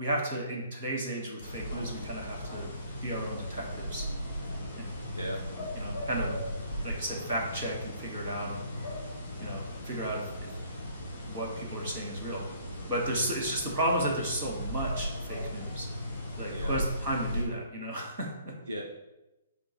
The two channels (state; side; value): inverted; both; correlation -0.59